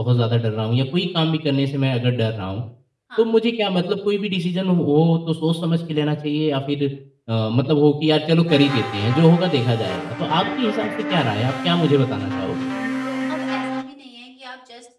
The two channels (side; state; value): both; identical; correlation 1.00